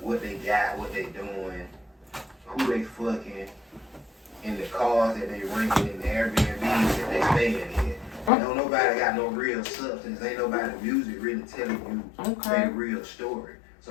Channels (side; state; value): right; drops out; at 8.3 s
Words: what they got, what they doing, who they fucking, in the cars that they renting, in the Airbnbs that they staying in. Don't nobody got no real substance. Ain't nobody music really telling you their real story.